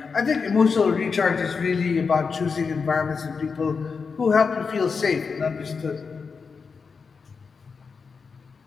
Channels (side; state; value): right; quieter; 5.2 dB